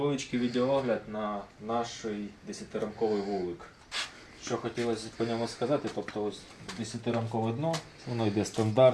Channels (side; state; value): both; identical; correlation 1.00